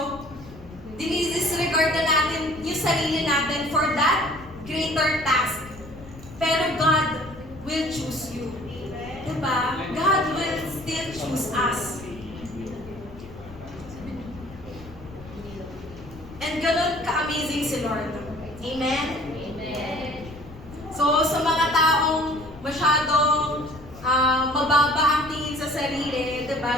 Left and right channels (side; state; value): left; noise; rumble, 17 dB below the sound